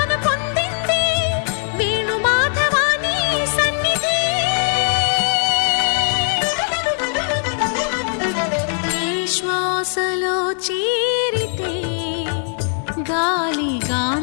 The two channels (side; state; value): right; silent; 64 dB below the other